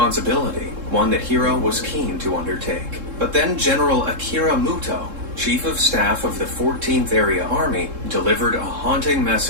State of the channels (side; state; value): left; late; 3.7 ms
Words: one that Hiro was keen to undertake. But then General Akira Muto, Chief of Staff of the 14th Area Army, delivered a haunting